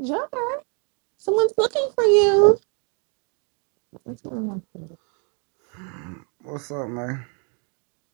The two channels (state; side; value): quieter; left; 38.3 dB